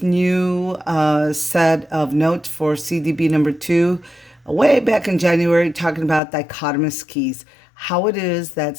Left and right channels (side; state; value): right; drops out; at 6.2 s